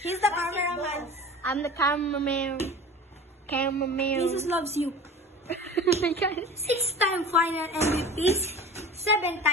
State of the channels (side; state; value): both; normal; correlation 0.38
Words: He's the cameraman. I'm the cameraman. Jesus loves you. 6-time final MVPs,